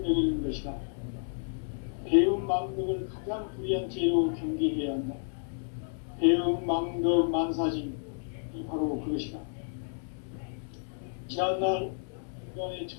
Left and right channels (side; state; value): right; silent; digital silence